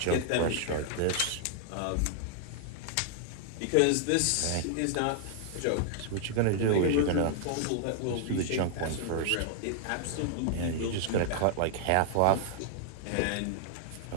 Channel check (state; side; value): different; both; correlation 0.00